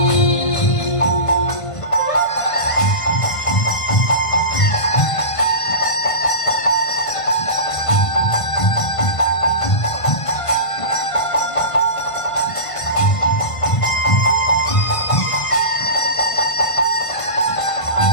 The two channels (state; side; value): late; right; 1.5 ms